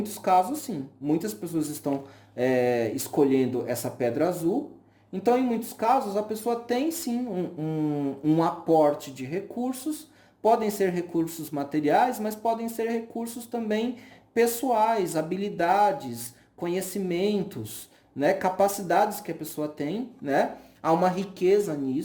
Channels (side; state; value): both; identical; correlation 1.00